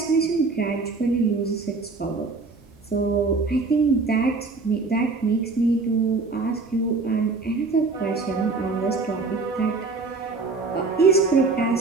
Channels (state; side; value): quieter; left; 3.9 dB